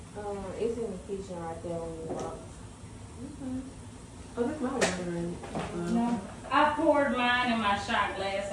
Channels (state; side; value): identical; both; correlation 1.00